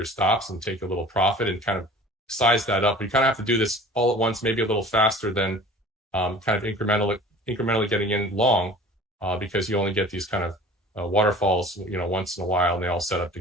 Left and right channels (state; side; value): normal; both; correlation 0.44